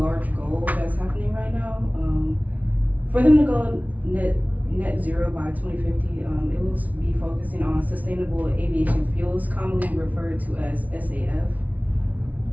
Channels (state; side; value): late; left; 0.072 ms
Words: goal that's happening right now. For them to go net zero by 2050, it will be focusing on sustainable aviation fuels, commonly referred to as SAF.